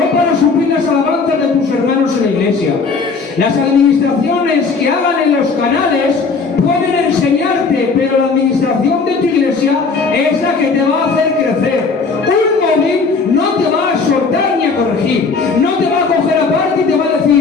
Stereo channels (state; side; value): quieter; right; 4.6 dB